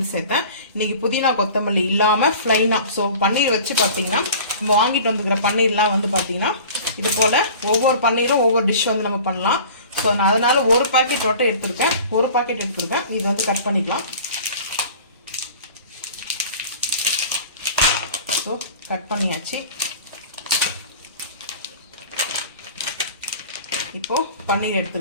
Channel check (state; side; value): inverted; both; correlation -0.42